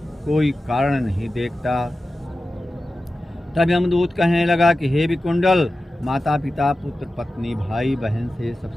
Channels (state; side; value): normal; both; correlation 0.94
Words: कोई कारण नहीं देखता। तब यमदूत कहने लगा कि हे विकुंडल, माता पिता, पुत्र पत्नी, भाई बहन से सब